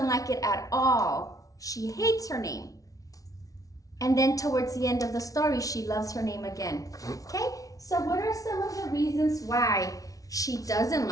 like it at all. She hates her name. And then towards the end of the story, she loves her name again. Okay, so what are some of the reasons why she doesn't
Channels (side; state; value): right; late; 0.17 ms